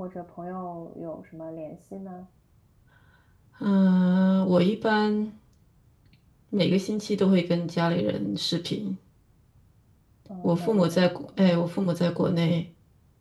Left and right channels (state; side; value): identical; both; correlation 1.00